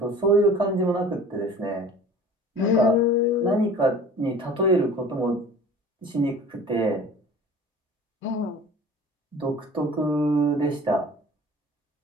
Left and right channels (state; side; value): normal; both; correlation 0.44